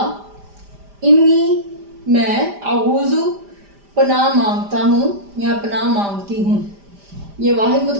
انی، میں، اعوذ، پناہ مانگتا ہوں یا پناہ مانگتی ہوں۔ یہ واحد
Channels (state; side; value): late; left; 5.0 ms